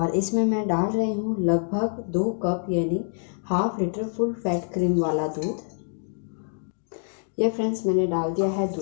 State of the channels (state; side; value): silent; right; 61 dB below the other